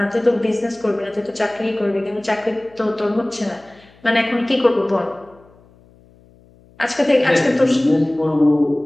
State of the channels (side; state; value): left; noise; hum, 28 dB below the sound